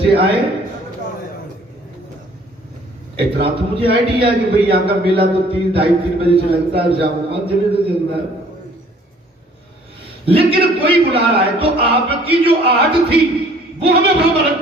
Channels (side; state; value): both; normal; correlation 0.56